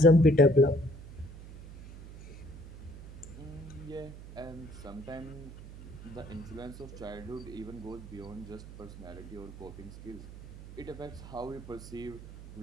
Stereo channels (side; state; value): right; noise; hum, 14 dB below the sound